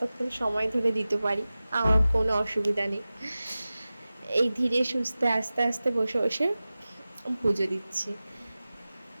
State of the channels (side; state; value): both; inverted; correlation -0.96